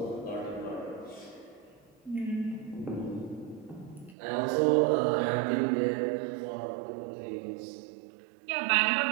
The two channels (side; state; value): left; drops out; at 4.2 s